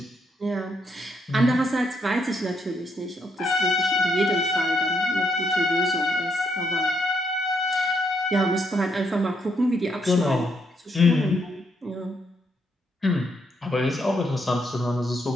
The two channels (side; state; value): both; normal; correlation 0.76